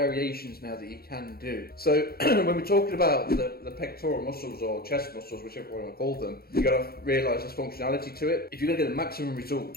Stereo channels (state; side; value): late; right; 0.44 ms